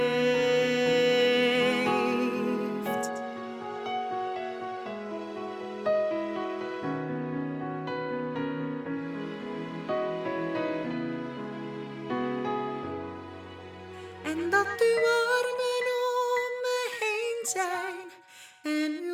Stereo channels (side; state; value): both; identical; correlation 1.00